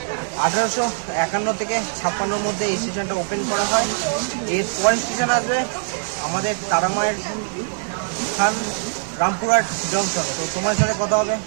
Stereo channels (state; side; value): silent; left; digital silence